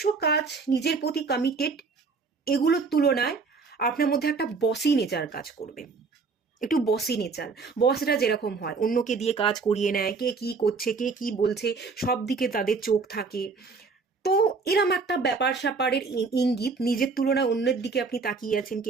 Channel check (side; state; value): left; quieter; 4.6 dB